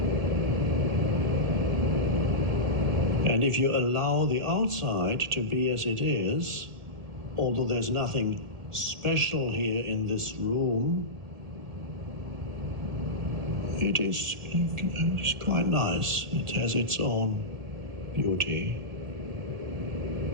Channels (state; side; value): late; left; 2.1 ms